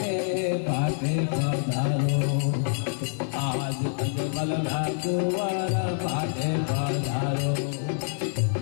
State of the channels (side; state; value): right; silent; 61 dB below the other